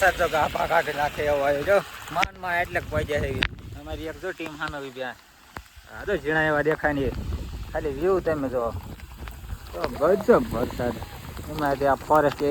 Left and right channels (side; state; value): both; identical; correlation 1.00